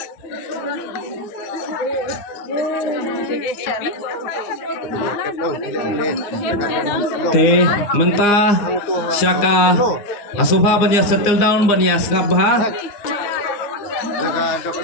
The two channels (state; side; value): late; right; 9.8 ms